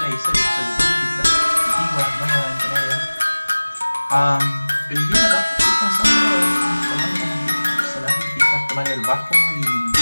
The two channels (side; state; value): both; inverted; correlation -1.00